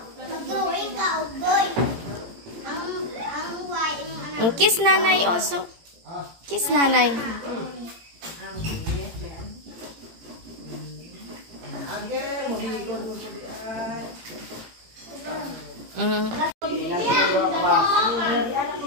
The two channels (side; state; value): left; late; 18 ms